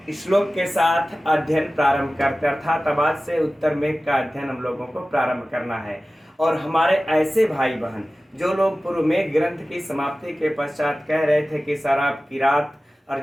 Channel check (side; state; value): both; normal; correlation 0.96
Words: श्लोक के साथ अध्ययन प्रारंभ करते हैं, अर्थात अब आज से उत्तर मेघ का अध्ययन हम लोगों को प्रारंभ करना है। और हमारे ऐसे भाई बहन जो लोग पूर्व मेघ ग्रंथ की समाप्ति के पश्चात कह रहे थे कि सर आप किरात